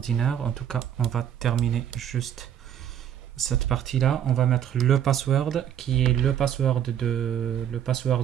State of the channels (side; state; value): left; quieter; 9.8 dB